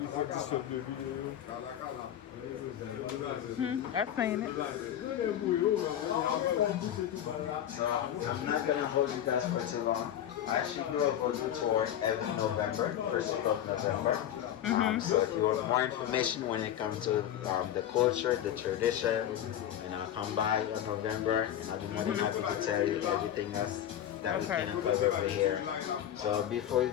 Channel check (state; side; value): quieter; right; 10.8 dB